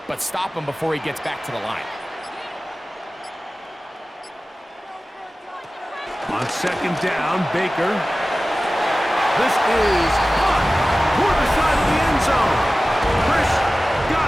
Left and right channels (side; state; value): both; normal; correlation 0.96